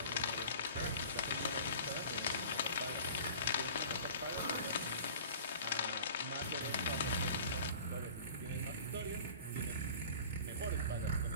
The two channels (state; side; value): inverted; both; correlation -0.42